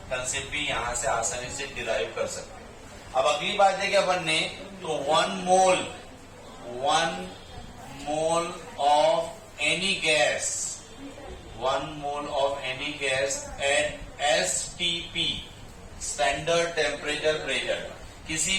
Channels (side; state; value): both; identical; correlation 1.00